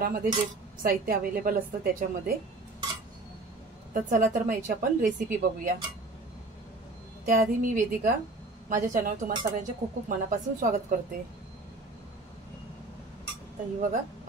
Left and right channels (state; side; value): quieter; left; 3.1 dB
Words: जे साहित्य अवेलेबल असतं त्याच्यामध्ये। तर चला तर मग याची आपण रेसिपी बघूया। त्याआधी मी वेदिका, माझ्या चॅनलवर तुम्हा सगळ्यांचे खूप खूप मनापासून स्वागत करते। तर ही बघा